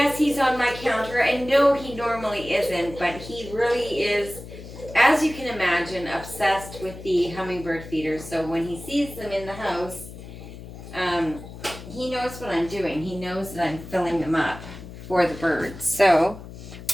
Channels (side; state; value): left; noise; hum, 14 dB below the sound